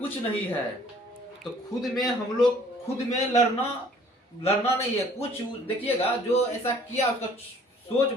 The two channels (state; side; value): normal; both; correlation 0.56